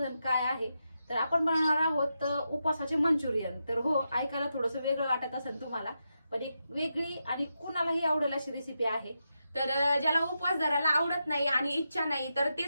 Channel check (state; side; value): inverted; both; correlation -0.86